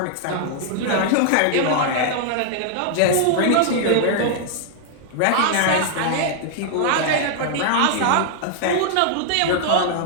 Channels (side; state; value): both; different; correlation -0.01